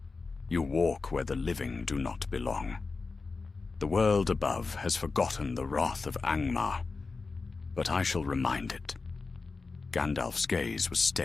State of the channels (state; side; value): quieter; right; 4.2 dB